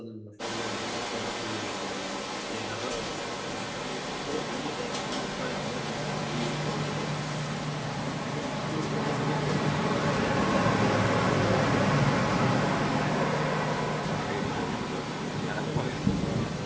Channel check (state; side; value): identical; both; correlation 1.00